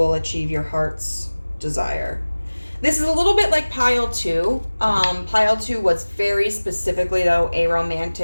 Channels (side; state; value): both; inverted; correlation -1.00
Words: achieve your heart's desire. This is a little bit like Pile 2. Pile 2 was very specifically, though, a